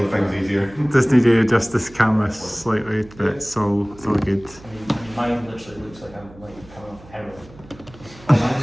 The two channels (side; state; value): right; noise; hum, 22 dB below the sound